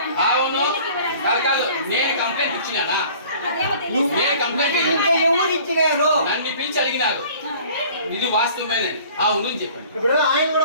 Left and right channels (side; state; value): both; inverted; correlation -0.49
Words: అవును కాదు, నేను కంప్లైంట్ ఇచ్చినానా? నేను కంప్లైంట్ ఎవరు ఇచ్చినారు? నన్ను పిలిచి అడిగినారు. ఇది వాస్తవమేనే. అవును చెప్పండి. ఇప్పుడు ఆయన